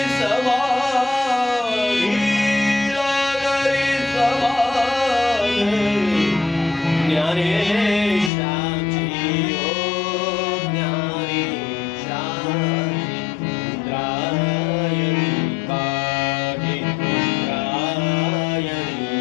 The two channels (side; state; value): right; drops out; at 8.3 s